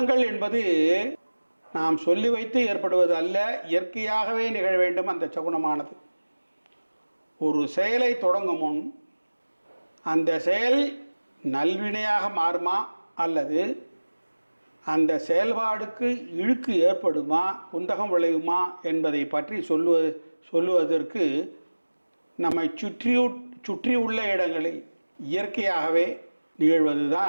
என்பது நாம் சொல்லி வைத்து ஏற்படுவது அல்ல, இயற்கையாகவே நிகழ வேண்டும். அந்த சகுனமானது ஒரு செயலை தொடங்கும் முன் அந்த செயல் நல்வினையாக மாறுமா அல்லது அந்த செயல்பாடுக்கு இழுக்கு ஏற்படுமா, குந்தகம் விளையுமா என்பதை பற்றி சொல்லுவதற்கு நம்மை சுற்றியுள்ள இடங்களில் இயற்கையாகவே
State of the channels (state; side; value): inverted; both; correlation -1.00